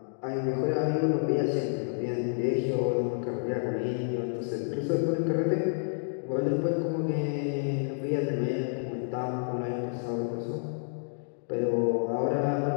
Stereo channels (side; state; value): right; silent; digital silence